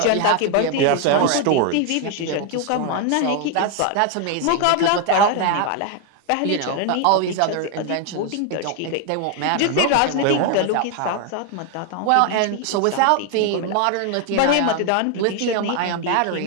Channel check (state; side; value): different; both; correlation 0.01